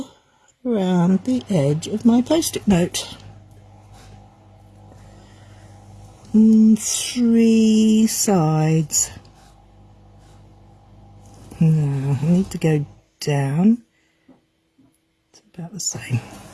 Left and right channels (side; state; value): both; identical; correlation 1.00